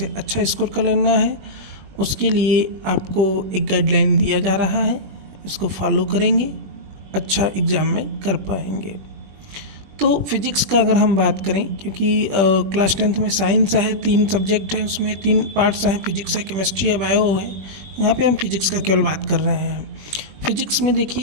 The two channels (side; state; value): left; late; 21 ms